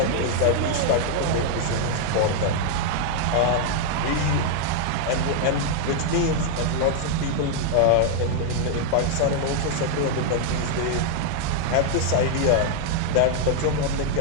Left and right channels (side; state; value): both; different; correlation 0.00